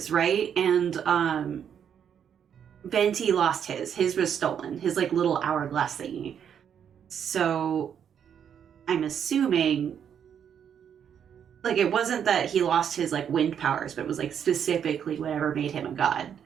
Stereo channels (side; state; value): left; quieter; 8.4 dB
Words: right? And Venti lost his. His was stolen. His like little hourglass thingy. So I'm assuming like it wasn't that he lost his like wind powers, but it was like specifically whatever made him a god.